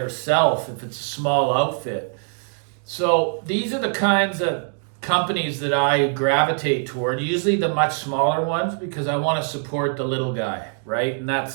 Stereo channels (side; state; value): left; silent; 55 dB below the other